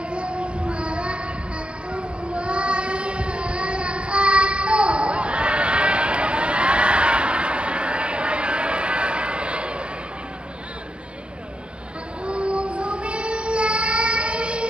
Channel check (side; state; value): left; late; 0.057 ms